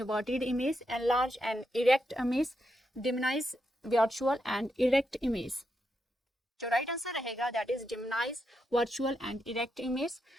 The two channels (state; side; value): normal; both; correlation 0.83